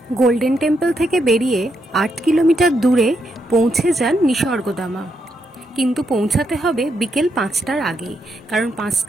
গোল্ডেন টেম্পল থেকে বেরিয়ে 8 কিলোমিটার দূরে পৌঁছে যান নিসর্গধামা। কিন্তু পৌঁছাতে হবে বিকেল 5টার আগেই, কারণ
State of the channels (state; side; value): normal; both; correlation 0.80